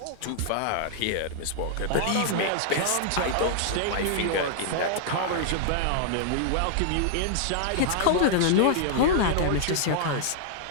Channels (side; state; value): both; different; correlation -0.01